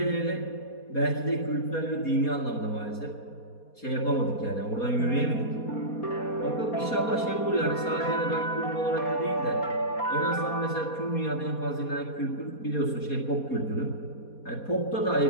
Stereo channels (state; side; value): late; right; 4.2 ms